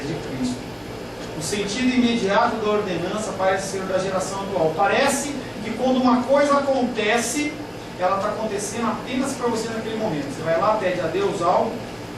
de Cristo. O sentido imediato da ordenança parece ser da geração atual. Parece que quando uma coisa acontece, ela está acontecendo apenas para você naquele momento. Você vai lá, pede a Deus algo,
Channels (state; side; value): identical; both; correlation 1.00